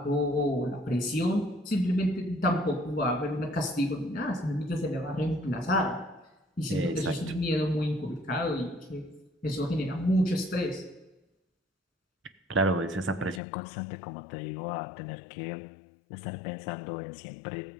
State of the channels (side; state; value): right; drops out; at 13.4 s